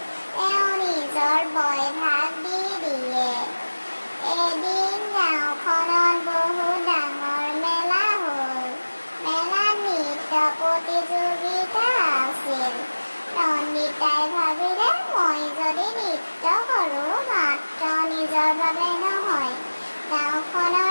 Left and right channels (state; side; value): inverted; both; correlation -1.00